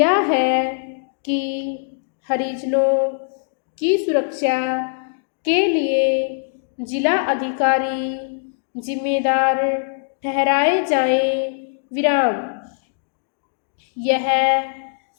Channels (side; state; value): right; silent; digital silence